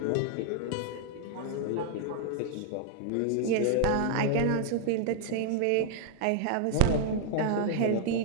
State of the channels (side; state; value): both; different; correlation 0.00